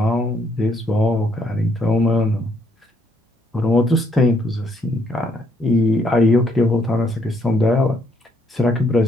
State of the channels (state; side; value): normal; both; correlation 0.70